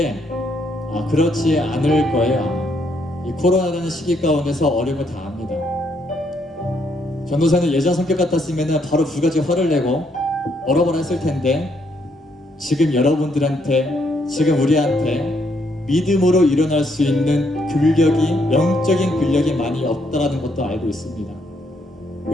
그렇지 않을 거예요. 이 코로나라는 시기 가운데서 어려움을 다 압니다. 전도사는 예전 성격 같았으면 바로 두 가지 화를 내고 얼어버려 했을 텐데 지금 여러분들한테, 지금 우리한테 믿음으로 일어날 수 있는 영적인 근력이 많이 없다라는 것도 알고 있습니다.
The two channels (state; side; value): normal; both; correlation 0.73